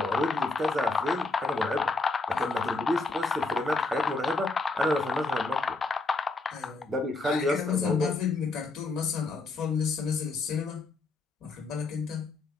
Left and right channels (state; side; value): quieter; right; 3.6 dB